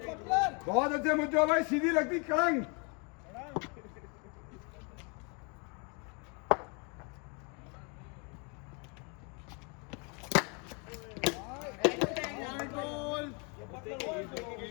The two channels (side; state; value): right; quieter; 31.6 dB